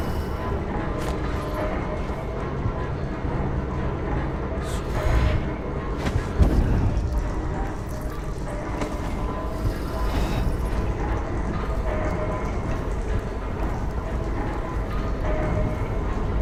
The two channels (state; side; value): identical; both; correlation 1.00